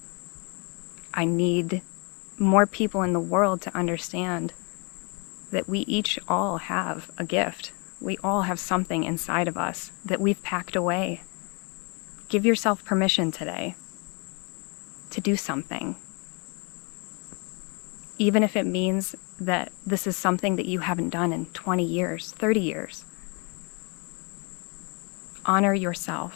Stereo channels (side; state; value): right; quieter; 33.0 dB